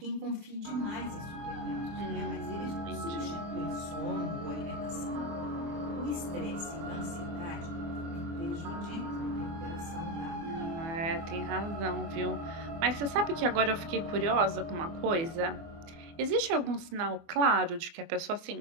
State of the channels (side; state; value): left; late; 24 ms